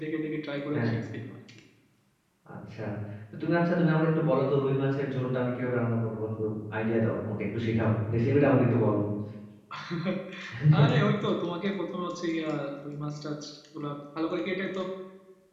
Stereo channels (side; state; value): both; identical; correlation 1.00